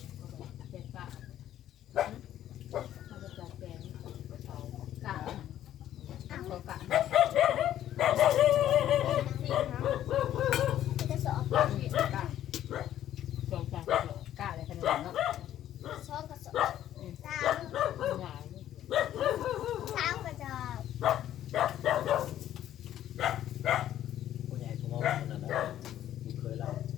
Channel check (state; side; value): quieter; right; 11.9 dB